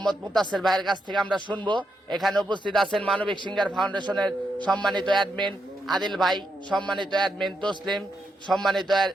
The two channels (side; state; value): both; normal; correlation 0.82